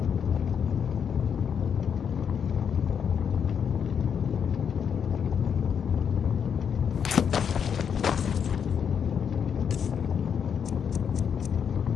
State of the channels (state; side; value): quieter; right; 7.4 dB